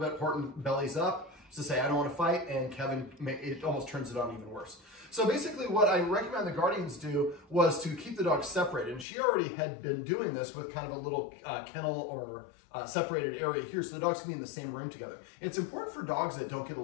Horton bellies up to say, I don't want to fight, and Kevin, it almost turns it on even worse. So basically what I recommend the guardians do was to keep the dogs separated. And she already had been doing this with kind of a little kennel or separated area here, so the dogs can be in the same room together. It's important for dogs that don't get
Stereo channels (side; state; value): right; drops out; at 9.1 s